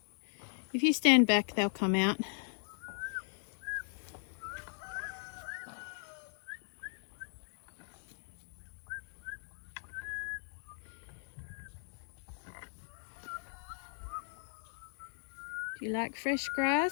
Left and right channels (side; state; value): right; silent; digital silence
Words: If you stand back, they'll come out. Do you like fresh